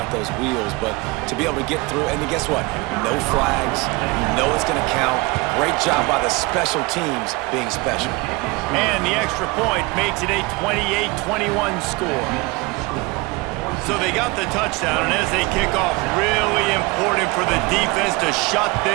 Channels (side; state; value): left; quieter; 24.5 dB